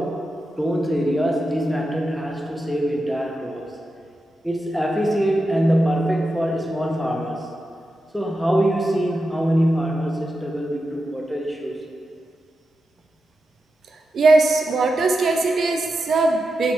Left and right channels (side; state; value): both; normal; correlation 0.89